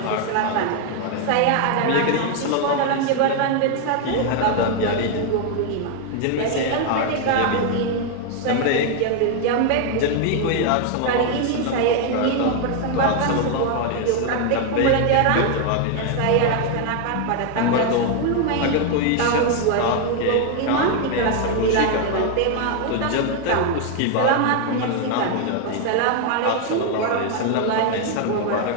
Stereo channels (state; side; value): different; both; correlation 0.01